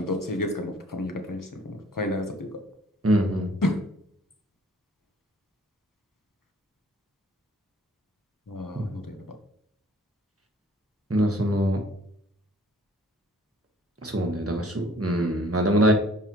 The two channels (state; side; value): normal; both; correlation 0.57